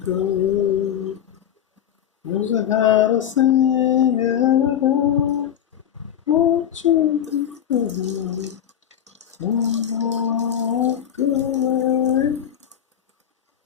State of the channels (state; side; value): quieter; right; 9.7 dB